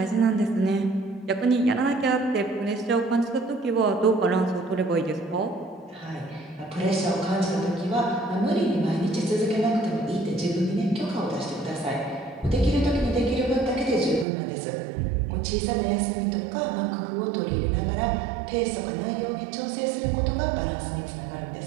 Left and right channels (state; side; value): drops out; left; at 14.2 s